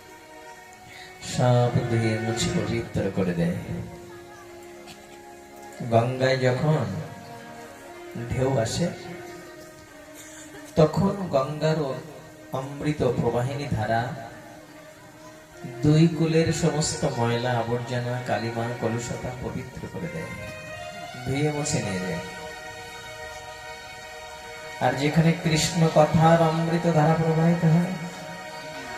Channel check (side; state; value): both; identical; correlation 1.00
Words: সব ধুয়ে মুছে পবিত্র করে দেয়। গঙ্গায় যখন ঢেউ আসে তখন গঙ্গার অমৃত প্রবাহিনী ধারা দুই কুলের সমস্ত ময়লা, আবর্জনা, কালিমা, কলুষতা পবিত্র করে দেয়, ধুয়ে মুছে নিয়ে যায়। আর যেখানে কৃষ্ণ কথার অমৃত ধারা প্রবাহিত হয়,